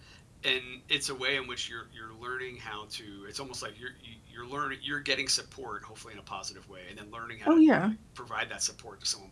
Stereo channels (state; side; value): identical; both; correlation 1.00